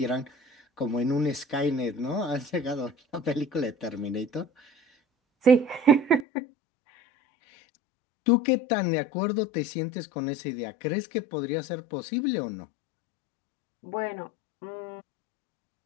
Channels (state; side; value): drops out; right; at 6.2 s